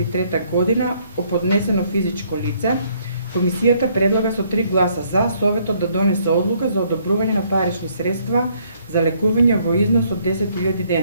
година од поднесено физичко лице. Комисијата предлага со 3 гласа за Советот да донесе одлука за одобрување на парични средства за лекување во износ од 10.000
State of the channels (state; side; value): inverted; both; correlation -0.67